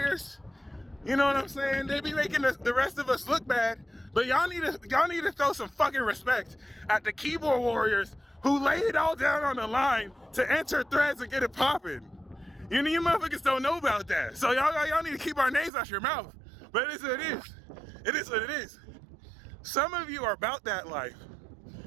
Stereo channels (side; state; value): left; drops out; at 15.7 s